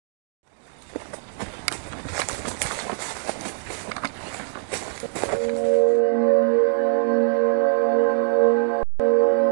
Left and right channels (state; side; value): silent; left; 64 dB below the other